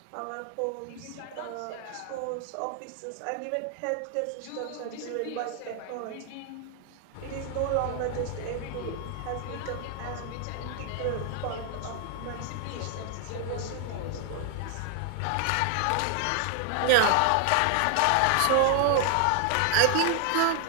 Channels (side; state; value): both; different; correlation 0.00